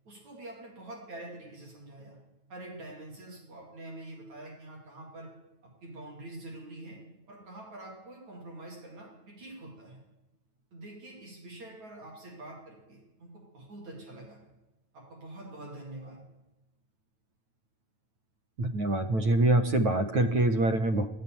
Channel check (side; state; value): left; late; 9.2 ms